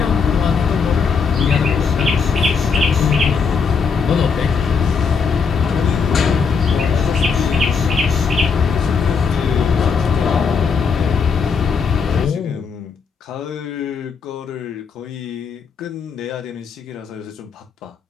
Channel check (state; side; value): quieter; right; 5.5 dB